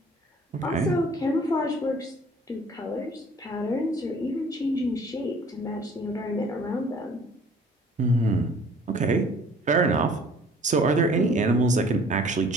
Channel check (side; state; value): both; normal; correlation 0.53